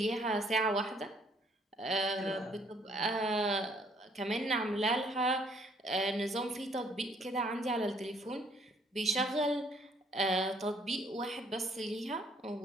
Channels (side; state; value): both; normal; correlation 0.64